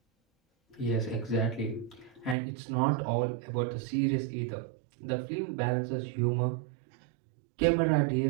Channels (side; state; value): left; drops out; at 2.4 s